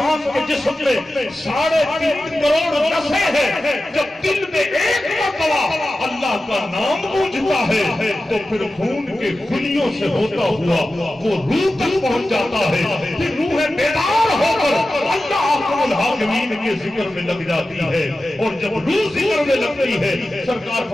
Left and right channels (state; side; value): normal; both; correlation 0.94